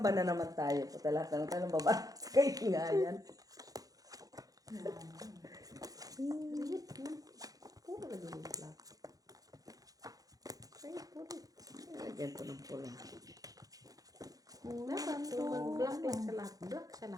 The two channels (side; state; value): left; late; 0.17 ms